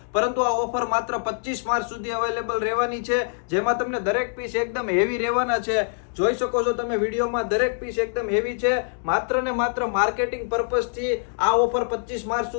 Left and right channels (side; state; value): right; silent; digital silence